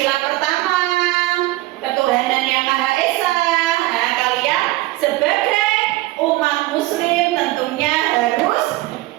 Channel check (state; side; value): quieter; left; 18.4 dB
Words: pertama, ketuhanan yang Maha Esa. Nah, kalian sebagai umat muslim tentunya harus